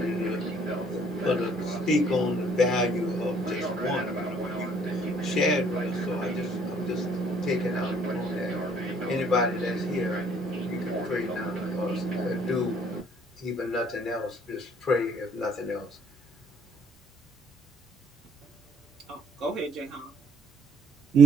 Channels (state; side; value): normal; both; correlation 0.61